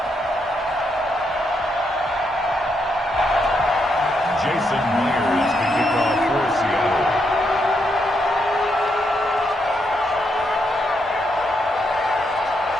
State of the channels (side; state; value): both; normal; correlation 0.79